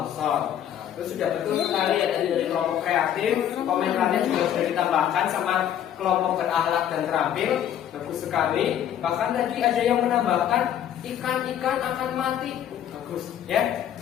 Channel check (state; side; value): quieter; right; 10.2 dB